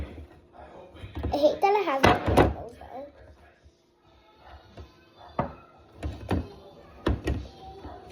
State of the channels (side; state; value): both; identical; correlation 1.00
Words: I hate that it has rainbows though.